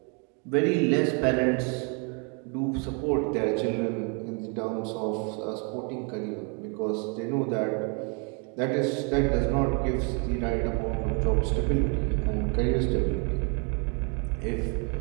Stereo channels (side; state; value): left; quieter; 36.1 dB